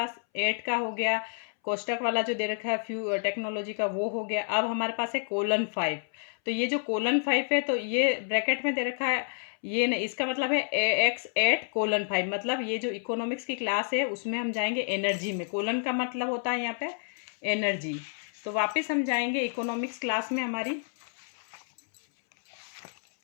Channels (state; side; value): silent; right; 58 dB below the other